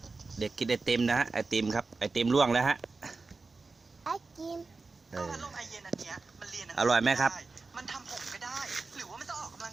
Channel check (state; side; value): quieter; left; 3.9 dB